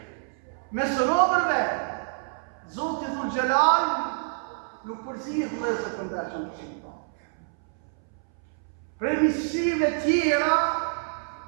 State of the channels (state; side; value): silent; left; 60 dB below the other